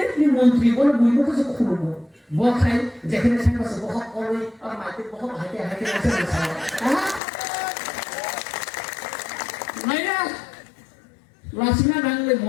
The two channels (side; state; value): right; drops out; at 7.2 s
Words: ni menteri boleh buat apa saja kubu. Bukan jangan saya masuk bohong oleh orang mati bohong hati masih salah. Mana? লাসিনা নাংলে